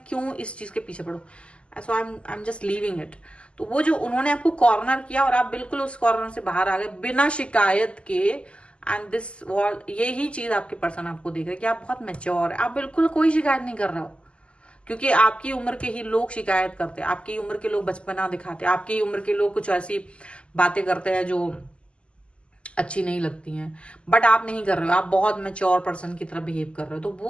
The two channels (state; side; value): late; right; 0.054 ms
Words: क्यों इस चीज के पीछे पड़ूं, so I am just leaving it. तो वो जो उन्होंने आपको कॉर्नर किया और आप बिल्कुल उस कॉर्नर से बाहर आ गए बिना शिकायत के, एंड दिस वॉल, यही चीज आपके पर्सन आपको देख रहे हैं कि आप बहुत मैच्योर है, आप बिल्कुल कोई शिकायत नहीं कर रहे हो, क्योंकि आपकी उम्र के ही लोग शिकायत करते हैं, आपकी उम्र के लोग बचपना दिखाते हैं, आपकी उम्र के लोग कुछ ऐसी बातें करते हैं जो अच्छी नहीं लगती हैं, बट आप नहीं कर रहे हो, आप बहुत मैच्योर पर्सन की तरह बिहेव कर रहे हो, तो